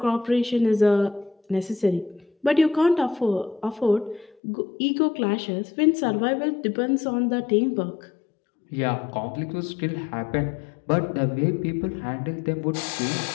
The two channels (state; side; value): drops out; right; at 4.4 s